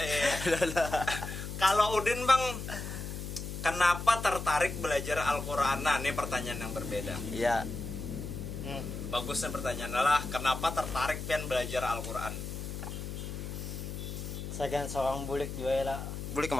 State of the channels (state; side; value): noise; left; hum, 6 dB below the sound